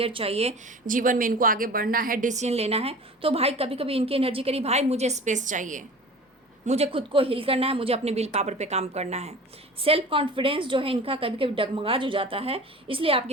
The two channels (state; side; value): normal; both; correlation 0.39